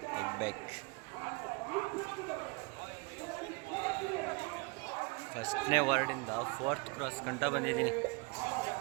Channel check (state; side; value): quieter; left; 29.3 dB